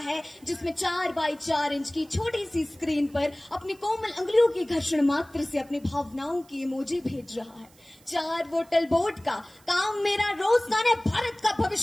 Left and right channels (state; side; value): noise; right; hiss, 28 dB below the sound